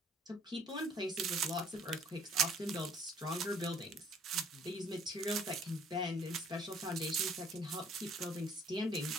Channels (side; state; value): both; normal; correlation 0.58